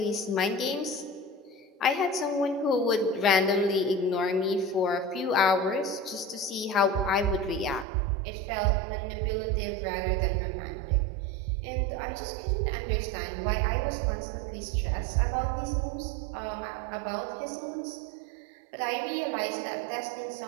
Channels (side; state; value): left; drops out; at 7.9 s